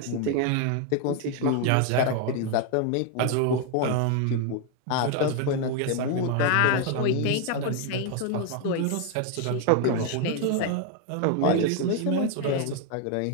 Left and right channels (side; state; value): both; different; correlation 0.01